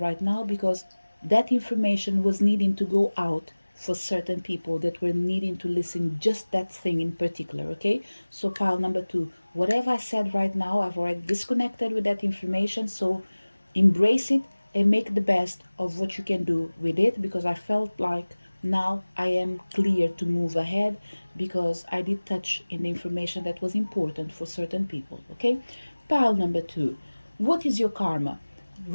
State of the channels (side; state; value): both; inverted; correlation -1.00